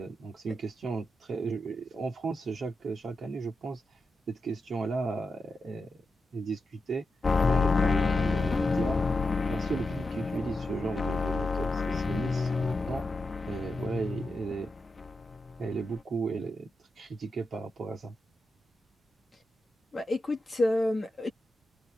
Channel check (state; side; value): normal; both; correlation 0.88